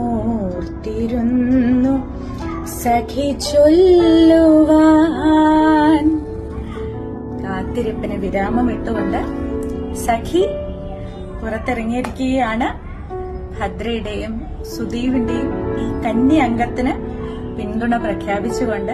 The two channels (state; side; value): identical; both; correlation 1.00